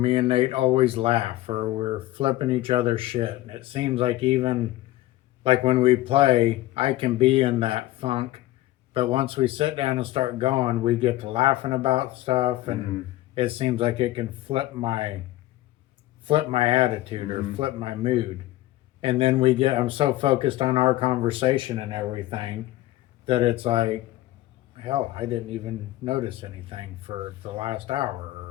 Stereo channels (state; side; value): quieter; right; 16.2 dB